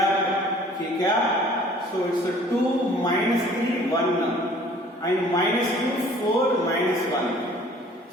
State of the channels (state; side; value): normal; both; correlation 0.53